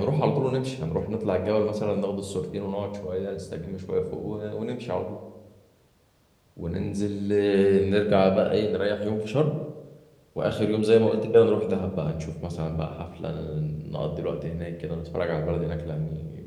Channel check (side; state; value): both; identical; correlation 1.00